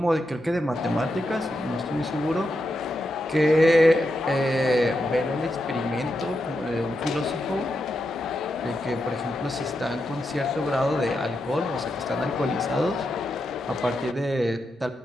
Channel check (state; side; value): normal; both; correlation 0.85